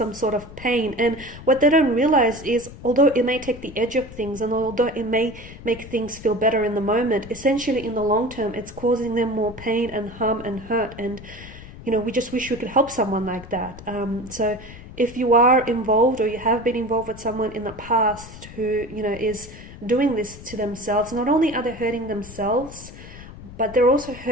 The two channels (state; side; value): noise; left; rumble, 16 dB below the sound